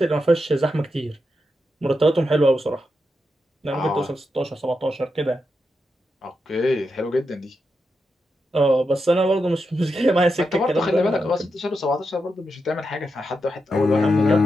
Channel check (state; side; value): normal; both; correlation 0.86